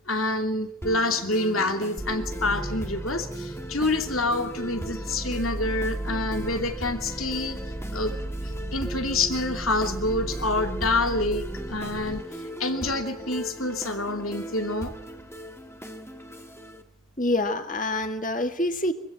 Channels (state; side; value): normal; both; correlation 0.31